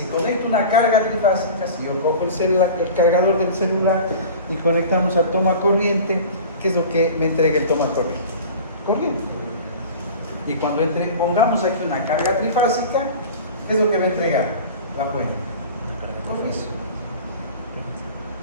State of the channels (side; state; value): both; inverted; correlation -0.38